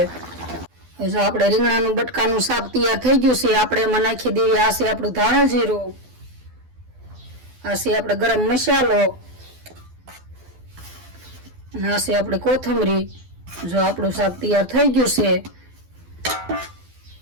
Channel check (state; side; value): late; left; 12 ms